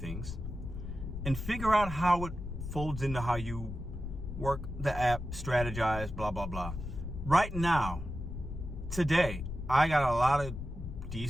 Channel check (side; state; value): left; noise; rumble, 7 dB below the sound